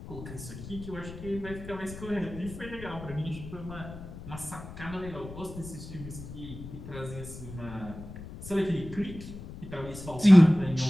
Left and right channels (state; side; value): noise; left; rumble, 12 dB below the sound